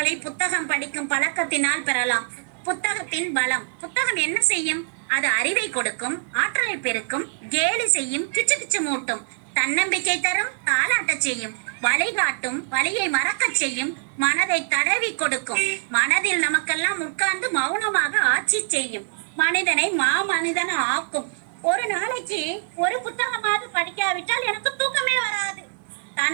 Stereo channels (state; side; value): silent; left; digital silence